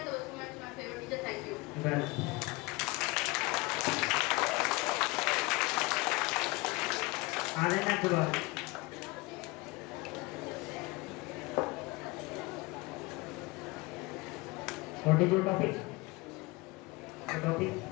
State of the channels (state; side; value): quieter; right; 23.6 dB